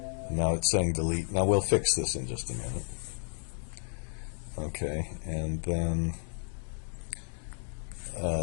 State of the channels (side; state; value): right; silent; digital silence